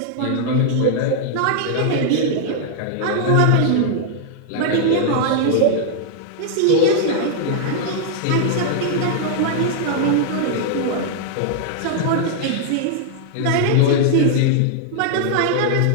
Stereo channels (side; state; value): both; different; correlation 0.00